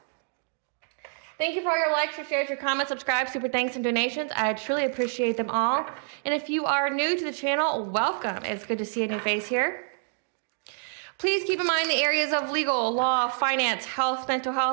Thank you for all your likes, your shares, your comments, subscribes, super thanks, and donations. I truly appreciate them all. And if you are new to the channel, welcome. It's good to see a new face here. Please keep in mind the areas of legal, law, finance, health, mental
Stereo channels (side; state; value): left; silent; digital silence